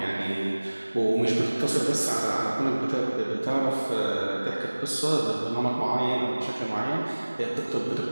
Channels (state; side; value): inverted; both; correlation -1.00